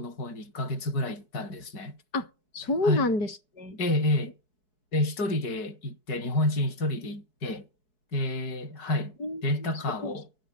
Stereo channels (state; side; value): late; right; 4.7 ms